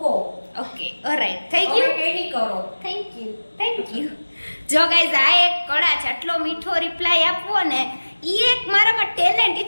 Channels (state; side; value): inverted; both; correlation -1.00